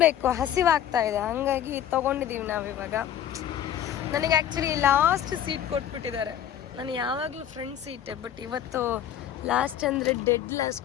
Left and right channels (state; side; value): quieter; right; 10.4 dB